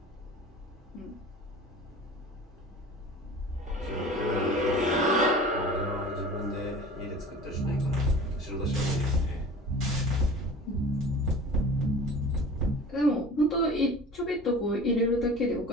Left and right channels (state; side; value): normal; both; correlation 0.40